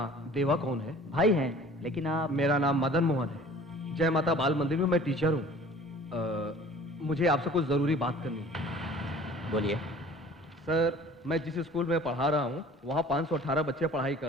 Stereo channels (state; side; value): normal; both; correlation 0.48